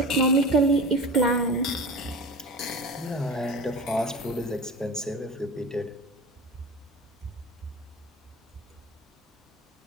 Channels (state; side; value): normal; both; correlation 0.32